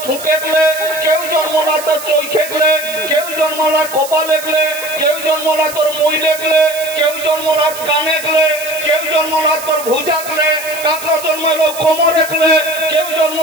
ফুঁকে গেলে, কেউ জন্মলা তোর চৈখে গেলে, কেউ জন্মলা কপালে গেলে, কেউ জন্মলা তোর মইলে গেলে, কেউ জন্মলা কানে গেলে, কেউ জন্মলা তোর ভুজা গেলে, কাকড়া জন্মালো কোমরে গেলে, কেউ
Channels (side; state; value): right; noise; hiss, 12 dB below the sound